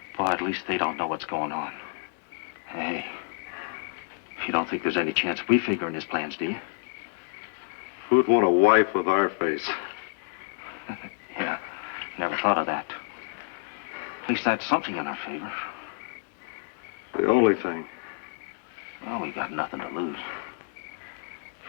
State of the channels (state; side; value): silent; right; digital silence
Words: Boy, at least they don't know what's going on. Hey, you don't think there's any chance we figure in his plans, do you? Who'd want a wife with our face? Yeah, never thought of that. At least that's something in our favor. The only thing. Well, we got nothing to lose.